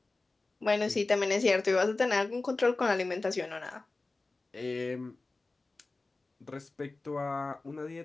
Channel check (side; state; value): right; quieter; 3.4 dB